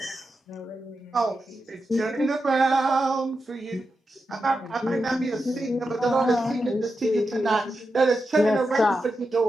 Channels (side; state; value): both; normal; correlation 0.89